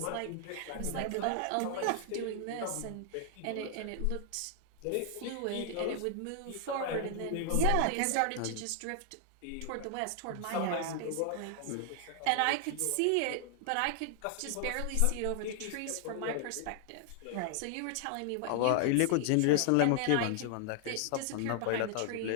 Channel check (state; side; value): different; both; correlation 0.00